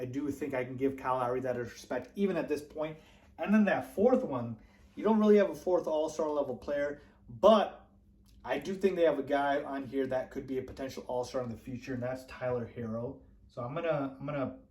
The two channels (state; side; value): identical; both; correlation 1.00